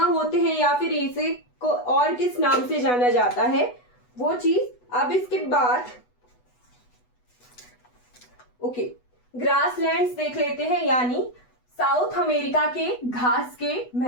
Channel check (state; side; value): late; right; 8.1 ms